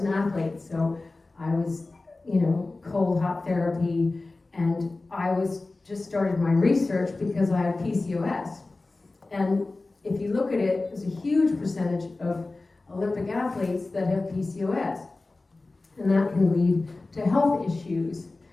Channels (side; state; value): right; quieter; 3.3 dB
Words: an athlete, so I was, cold hot therapy, and I just started my research because I had PCOS. And if you look at it, there's a huge percentage of Olympic athletes that have PCOS, and that can lead to health issues.